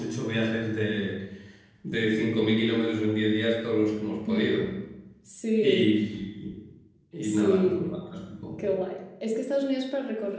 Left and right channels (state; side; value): identical; both; correlation 1.00